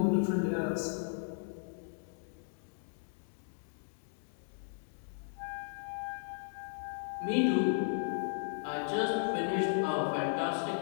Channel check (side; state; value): right; silent; 54 dB below the other